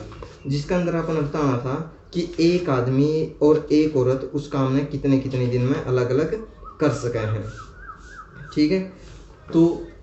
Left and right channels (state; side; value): identical; both; correlation 1.00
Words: जिसका अंदर अपन बताना था कि एक आदमी और एक औरत उस काम में कितने कितने दिन में अलग अलग कर सके हैं, ठीक है। तो